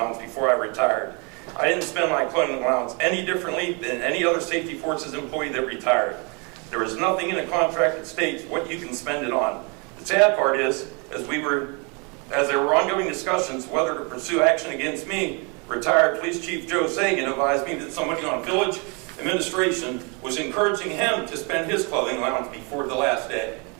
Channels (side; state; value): left; quieter; 33.0 dB